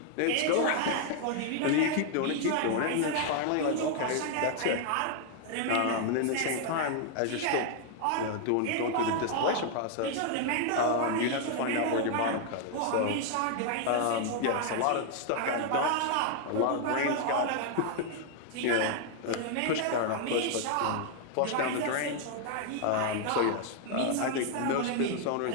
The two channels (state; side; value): different; both; correlation 0.00